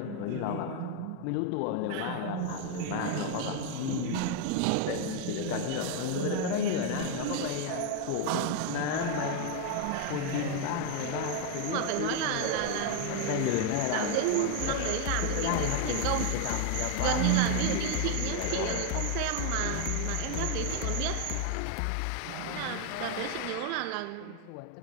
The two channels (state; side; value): different; both; correlation 0.01